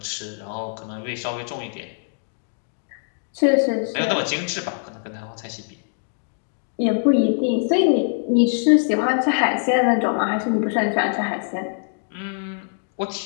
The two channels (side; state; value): right; silent; digital silence